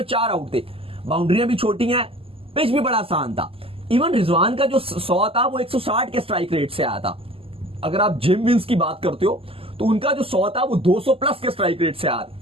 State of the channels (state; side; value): late; left; 0.27 ms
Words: 4 आउट थे, बाउंड्रियां भी छोटी हैं, पिच भी बड़ा आसान था। इवन रिजवान का जो 100 था वो 160 के स्ट्राइक रेट से आया था। अगर आप जिम विंस की बात करते हो तो उनका जो 100 था वो 200 प्लस के स्ट्राइक रेट से आया।